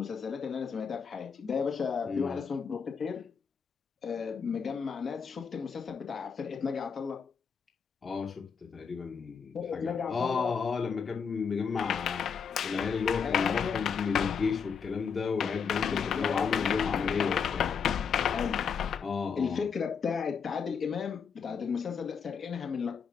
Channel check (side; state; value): right; quieter; 6.3 dB